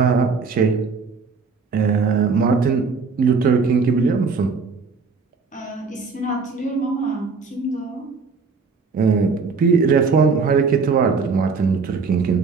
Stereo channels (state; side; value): quieter; left; 4.9 dB